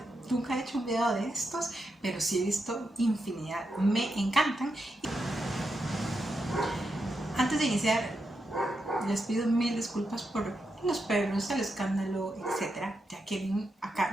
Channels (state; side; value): normal; both; correlation 0.85